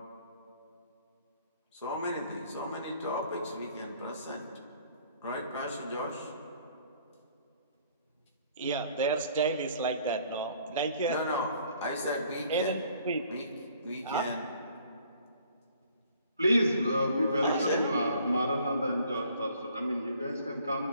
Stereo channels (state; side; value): inverted; both; correlation -0.59